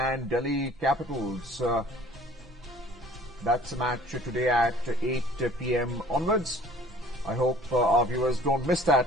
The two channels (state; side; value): normal; both; correlation 0.52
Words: Delhi Capitals. That's a match today at 8 p.m. onwards. I hope our viewers don't miss